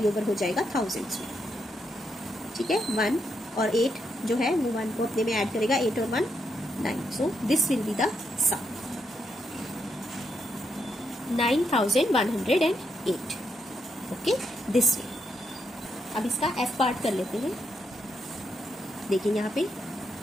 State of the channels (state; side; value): normal; both; correlation 0.80